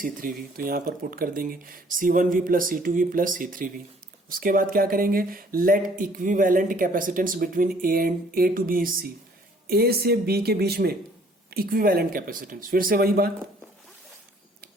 तो यहां पर पुट कर देंगे C1V plus C2V plus C3V। उसके बाद क्या करेंगे, let equivalent capacitance between A to B is C, A से B के बीच में इक्विवेलेंट कैपेसिटेंस, फिर से वही बात,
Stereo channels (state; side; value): normal; both; correlation 0.58